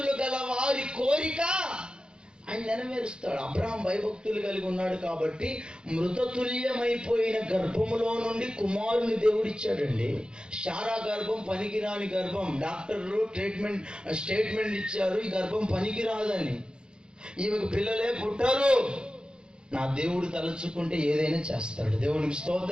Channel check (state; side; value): late; left; 0.049 ms